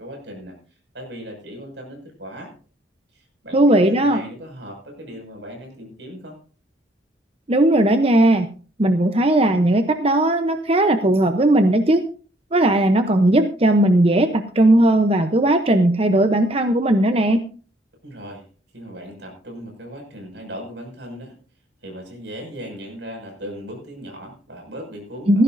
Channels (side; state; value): both; normal; correlation 0.64